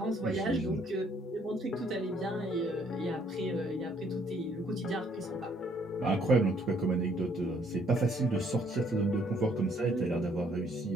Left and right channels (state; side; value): normal; both; correlation 0.65